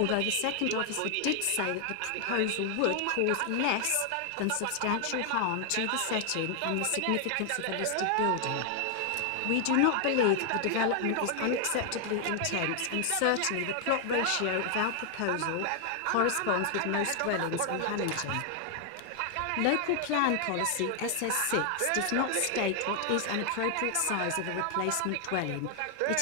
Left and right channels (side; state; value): both; different; correlation 0.00